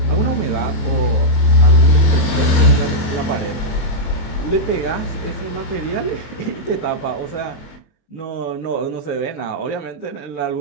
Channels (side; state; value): right; late; 23 ms